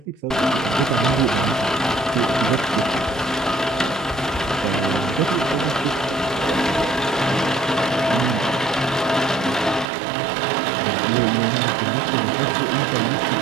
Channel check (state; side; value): drops out; left; at 9.9 s